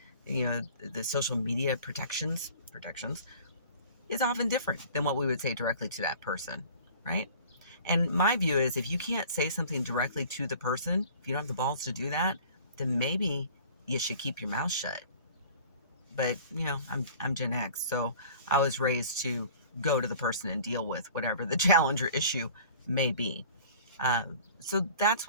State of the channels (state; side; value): inverted; both; correlation -0.46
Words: the social media protections is often different than what we would say directly to that person, right? And my view is if you can't say something directly to the person, if you don't have the balls to do that, then maybe you should keep your mouth shut. But I'm Gen X, so I was raised to go to the person and deal with whatever the challenge or issue may be. So that's